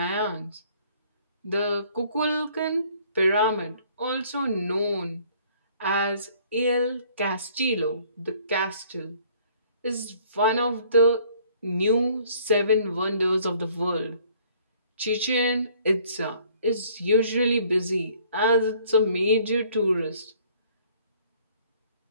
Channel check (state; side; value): inverted; both; correlation -0.58